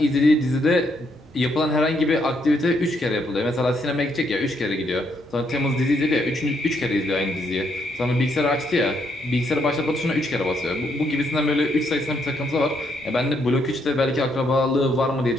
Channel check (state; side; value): normal; both; correlation 0.74